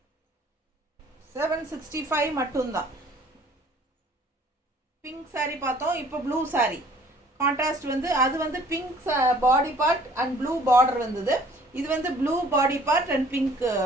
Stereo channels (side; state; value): both; normal; correlation 0.55